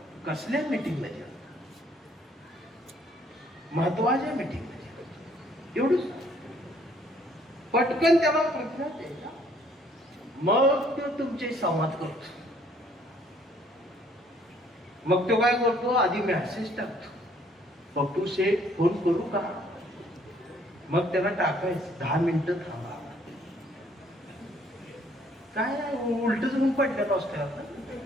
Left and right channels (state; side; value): normal; both; correlation 0.63